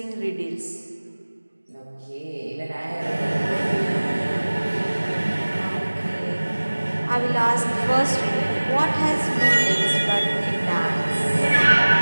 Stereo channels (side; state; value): both; inverted; correlation -1.00